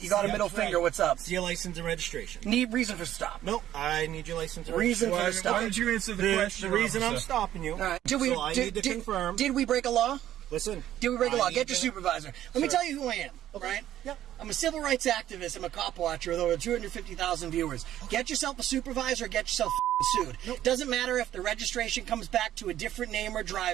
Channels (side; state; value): left; quieter; 12.3 dB